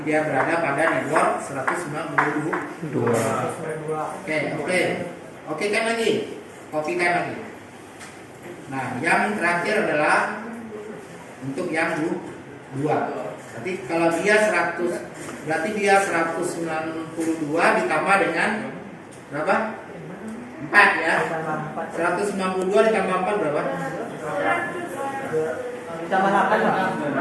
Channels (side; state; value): both; identical; correlation 1.00